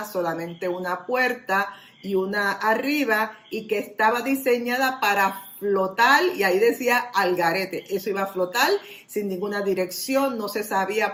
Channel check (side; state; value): both; identical; correlation 1.00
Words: solamente una puerta y una arriba, y que estaba diseñada para flotar, y ahí decía Algarete, eso iba a flotar sin ninguna dirección, no se sabía